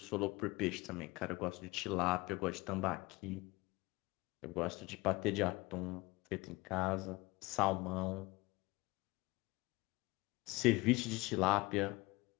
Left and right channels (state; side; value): quieter; right; 22.6 dB